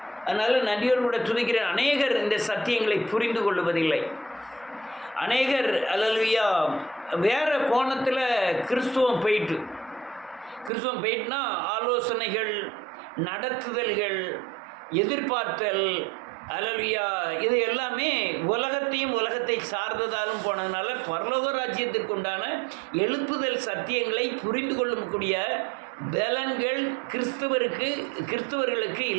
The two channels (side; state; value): left; drops out; at 10.7 s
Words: அதனால் நன்றியோடு கூட துதிக்கிறேன். அநேகர் இந்த சத்தியங்களை புரிந்து கொள்வதில்லை. அநேகர் அல்லேலூயா வேறு கோணத்தில் கிறிஸ்துவம் போயிட்டுனா ஆலோசனைகள், நடத்துதல்கள், எதிர்பார்த்தல், அல்லேலூயா இது எல்லாமே உலகத்தை சார்ந்ததாலும் போனதுனால பரலோக ராஜ்யத்திற்கு உண்டான எழுப்புதல் சத்தியங்களை புரிந்து கொள்ளக்கூடிய பலன்கள் கிறிஸ்தவர்களுக்கு